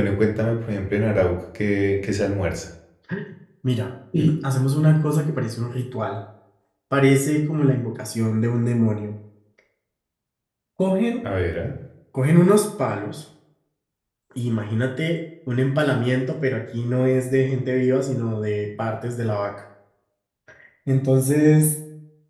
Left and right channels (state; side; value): identical; both; correlation 1.00